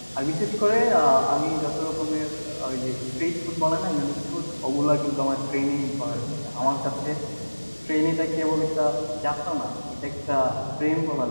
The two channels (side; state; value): both; inverted; correlation -1.00